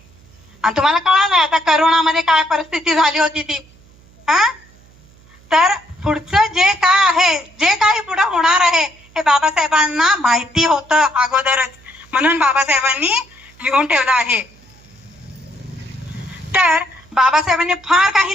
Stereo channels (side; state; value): right; noise; hum, 28 dB below the sound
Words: आणि तुम्हाला कळालं आता करोनामध्ये काय परिस्थिती झाली होती ती. तर पुढचं जे काय आहे, जे काही पुढे होणार आहे हे बाबासाहेबांना माहिती होतं अगोदरच, म्हणून बाबासाहेबांनी लिहून ठेवलं आहे. तर बाबासाहेबांनी फार